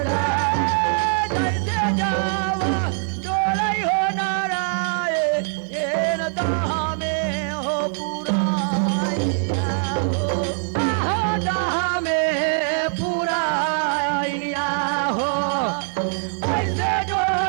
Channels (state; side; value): silent; left; 64 dB below the other